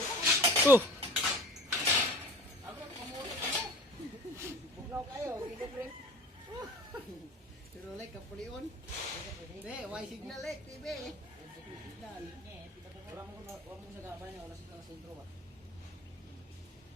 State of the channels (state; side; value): normal; both; correlation 0.41